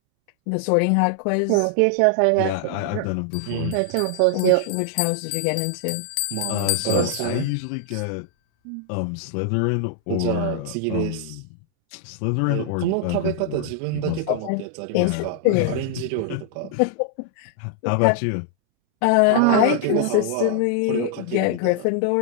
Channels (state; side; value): different; both; correlation 0.00